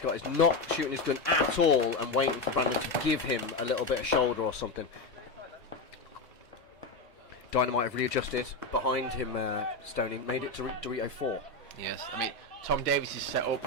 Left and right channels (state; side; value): quieter; right; 3.2 dB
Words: got is not shooting his gun at all and waiting for Brandon to give him a little bit of shoulder or something. Dynamite have readjusted behind him, Stoney, made it to Dorito 4. Yes, I mean, Tom Davies is set up